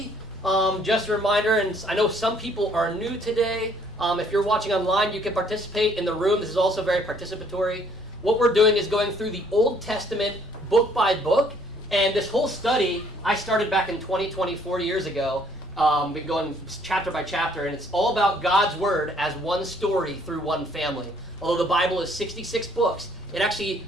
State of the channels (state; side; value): normal; both; correlation 0.62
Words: Just a reminder, and I know some people are new today. If you're watching online, you can participate in the room. This is also very participatory. What we're doing is going through the Old Testament book by book. And this whole study, I started back in 2020, 4 years ago. Been going chapter by chapter, and it's all about God's Word as one story through one family. Although the Bible is 66 books, the